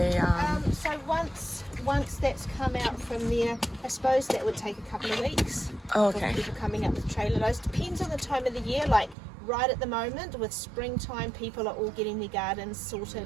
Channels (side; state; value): left; drops out; at 9.2 s